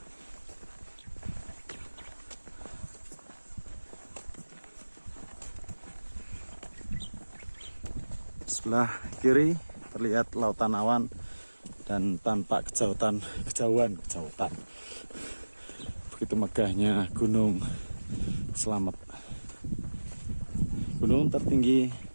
Sebelah kiri terlihat lautan awan dan tampak kejauhan. Begitu megahnya Gunung Slamet. Gunung tertinggi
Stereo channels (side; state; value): both; inverted; correlation -1.00